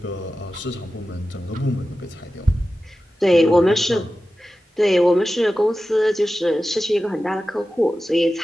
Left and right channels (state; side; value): normal; both; correlation 0.94